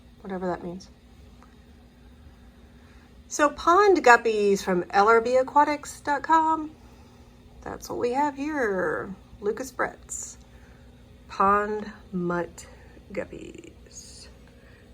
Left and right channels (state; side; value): identical; both; correlation 1.00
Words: Whatever that means. So pond guppies from LRBAquatics.com. That's what we have here. Lucas Brett's pond mutt guppies.